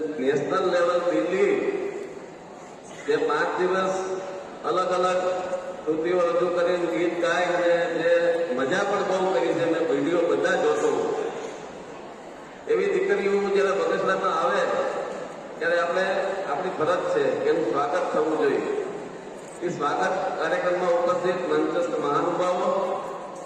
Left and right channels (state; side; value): identical; both; correlation 1.00